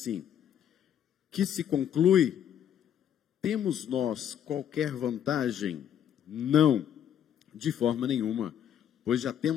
que se conclui, temos nós qualquer vantagem? Não, de forma nenhuma, pois já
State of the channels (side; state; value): right; quieter; 9.7 dB